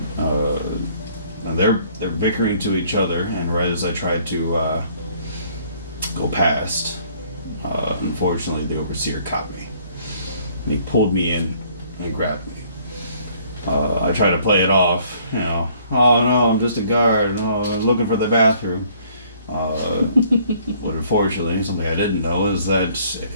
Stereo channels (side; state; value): both; inverted; correlation -0.61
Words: And they're bickering to each other, and right as I tried to go past, unfortunately the overseer caught me. And he pulled me in and grabbed me. I tried to play it off, oh no, I'm just a guard, I'm looking for the bathroom. But unfortunately, something I didn't know is that